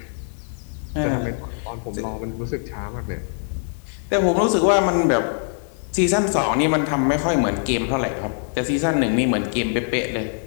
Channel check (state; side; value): silent; right; 62 dB below the other